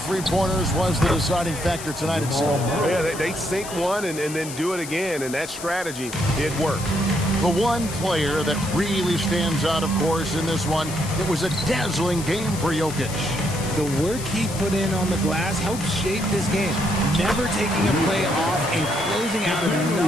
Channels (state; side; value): noise; left; hiss, 11 dB below the sound